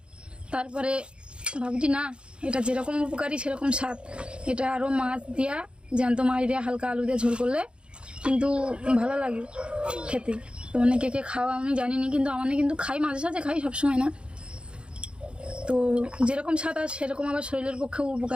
তারপরে ভাবছি না, এটা যেরকম উপকারী সেরকম স্বাদ। এটা আরও মাছ দিয়া, জ্যান্ত মাছ দিয়া হালকা আলু দিয়ে ঝোল করলে কিন্তু ভালো লাগে খেতে। তো কে কে খাওয়া আমি জানিনি, কিন্তু আমার কিন্তু খাই, মাঝে সাঝে খাই, সবসময় না। তো যেরকম স্বাদ আর সেরকম আবার শরীরের পক্ষেও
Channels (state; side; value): late; left; 0.055 ms